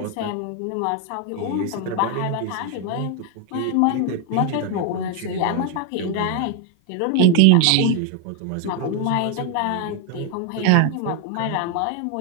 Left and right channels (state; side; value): different; both; correlation 0.01